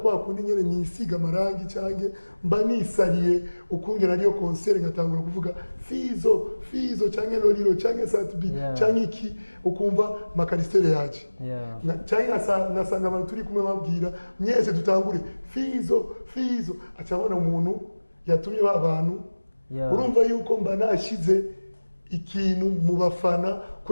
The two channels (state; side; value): inverted; both; correlation -1.00